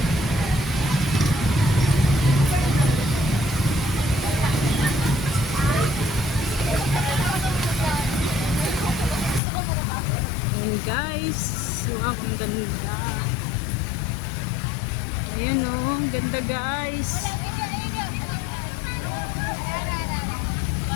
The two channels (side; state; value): right; drops out; at 9.4 s